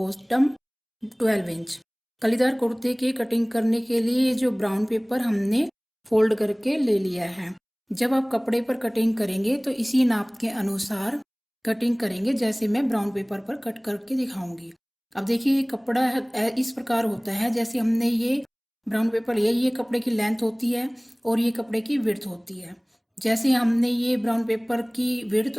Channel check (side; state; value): both; identical; correlation 1.00